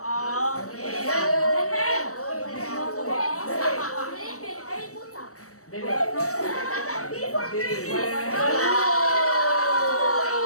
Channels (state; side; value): late; right; 0.65 ms